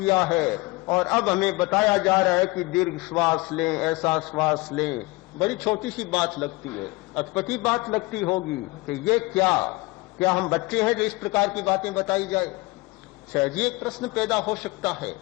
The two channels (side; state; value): right; quieter; 23.4 dB